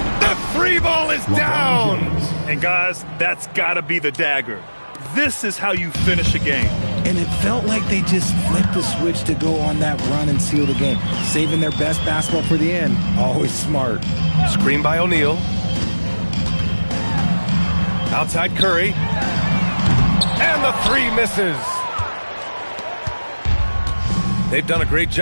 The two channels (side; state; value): both; inverted; correlation -1.00